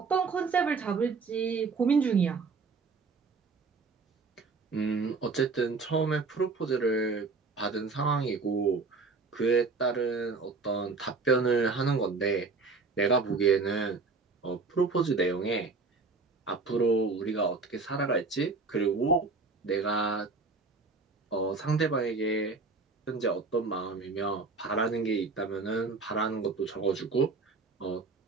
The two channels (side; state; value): left; quieter; 4.2 dB